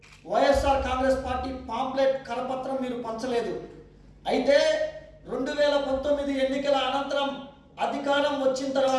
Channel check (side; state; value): both; identical; correlation 1.00